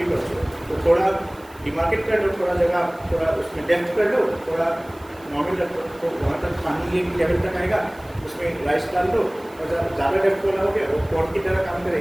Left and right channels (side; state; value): right; noise; hiss, 27 dB below the sound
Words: also. तो थोड़ा डिमार्केट कर लो, थोड़ा जगह थोड़ा उसमें डेप्थ कर लो, थोड़ा नॉर्मल रख लो, तो वहाँ तक पानी एक लेवल तक आएगा, उसमें राइस डाल दो और ज़्यादा डेप्थ वाला हो गया वो पॉट की तरह काम